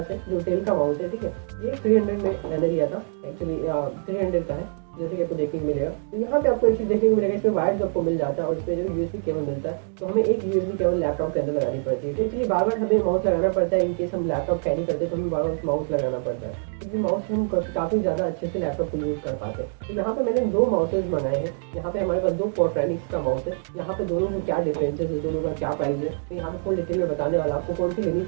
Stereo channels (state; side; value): silent; left; 59 dB below the other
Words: है जो डेल का माउस है, ठीक है। ये 300 में मैंने लिया था, एक्चुअली 300 का है जैसे कि आपको देखने को मिलेगा। तो यहाँ पे आपको एक चीज़ देखने को मिलेगा, इसमें वायर जो आपको मिल जाता है और इसमें जो यूएसबी केबल मिलता है, तो हमें एक यूएसबी केबल लैपटॉप के अंदर लगानी पड़ती है। तो एक्चुअली बार बार हमें माउस लगाना पड़ता है, इनकेस हम लैपटॉप कैरी करते हैं तो हमें बार बार माउस लगाना पड़ता है, क्योंकि माउस से हम काफ़ी ज़्यादा अच्छे से लैपटॉप को यूज़ कर पाते हैं। तो यहाँ पे मैंने दो माउसेज मंगाए हैं। यहाँ पे हमारे पास दो पोर्ट्रैनिक्स का माउस है। यहाँ पे दोनों को क्या डिफरेंसेस है, दोनों का क्या प्राइस है, मैं यहाँ पे फुल डिटेल में बताने वाला आपको कौन सी लेनी